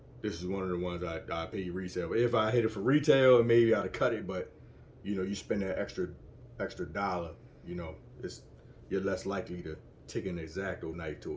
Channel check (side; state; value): both; identical; correlation 1.00